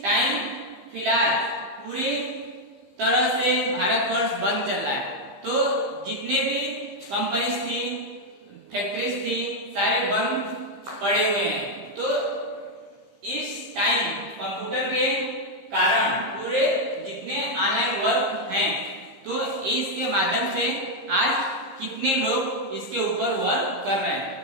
टाइम फिलहाल पूरी तरह से भारतवर्ष बंद चल रहा है, तो जितने भी कंपनीज थी, फैक्ट्रीज थी, सारे बंद पड़े हुए हैं। तो इस टाइम कंप्यूटर के कारण पूरे जितने ऑनलाइन वर्क हैं, तो इसके माध्यम से आज कितने लोग इसके ऊपर वर्क कर रहे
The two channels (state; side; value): late; left; 15 ms